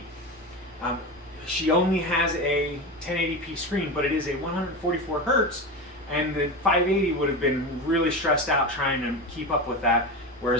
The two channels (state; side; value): normal; both; correlation 0.22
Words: She only has a 1080p screen, but it is a 144 hertz, and the 580 would have been really stressed out trying to keep up with that,